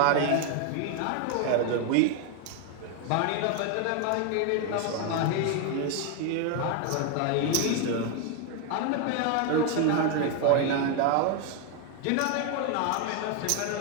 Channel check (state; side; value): different; both; correlation 0.01